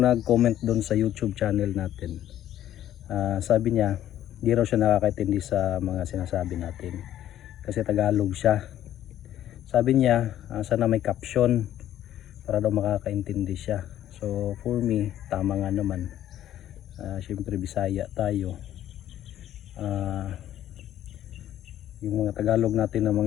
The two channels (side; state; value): right; quieter; 12.0 dB